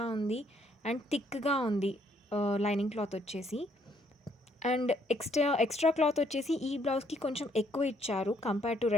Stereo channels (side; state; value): both; normal; correlation 0.68